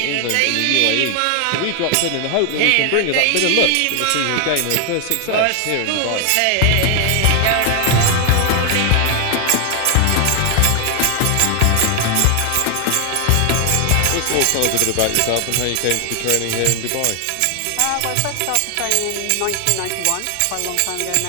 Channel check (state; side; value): different; both; correlation 0.00